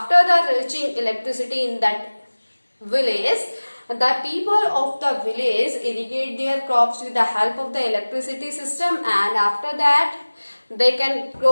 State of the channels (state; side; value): inverted; both; correlation -1.00